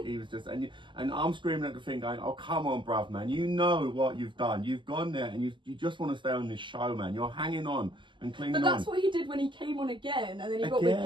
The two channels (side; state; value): left; late; 0.24 ms